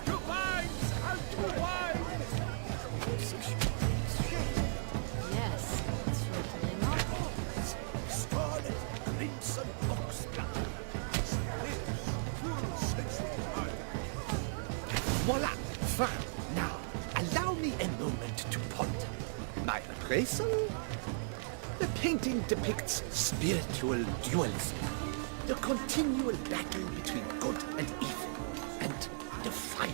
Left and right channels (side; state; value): left; silent; digital silence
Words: To vines and to wine! Composition takes shape. Yes, it's sure to be a masterpiece. Scarlet, crimson, oxblood. Voila! Fine. Now, allow me a moment to ponder. My appraisal? The painting depicts spiritual dualism. The continual battle between good and evil. And